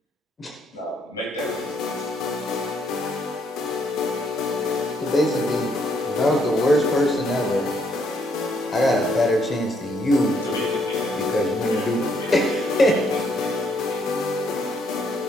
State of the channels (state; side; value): normal; both; correlation 0.71